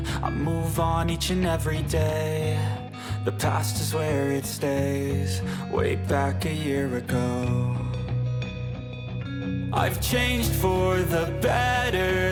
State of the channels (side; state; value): both; identical; correlation 1.00